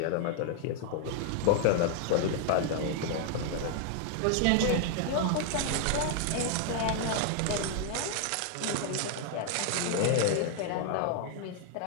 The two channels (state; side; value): different; both; correlation 0.00